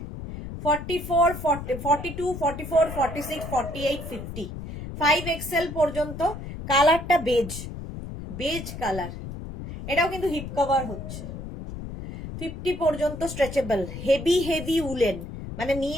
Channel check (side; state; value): left; noise; rumble, 9 dB below the sound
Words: 44, 42, 44, 46, 48, 50, 5XL পর্যন্ত। কালারটা বেজ কালার, এটাও কিন্তু হিপ কভার হচ্ছে। 50 পর্যন্ত স্ট্রেচেবল, হেভি উলেন, মানে